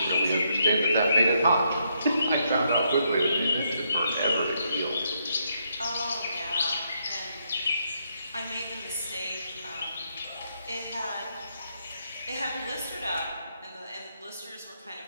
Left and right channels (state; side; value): inverted; both; correlation -0.76